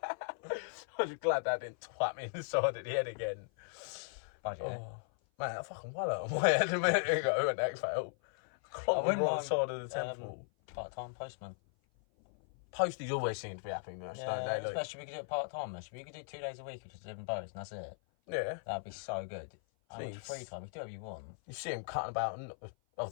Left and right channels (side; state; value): right; silent; 53 dB below the other